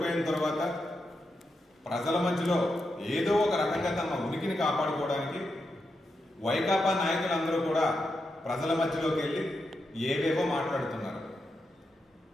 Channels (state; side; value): normal; both; correlation 0.86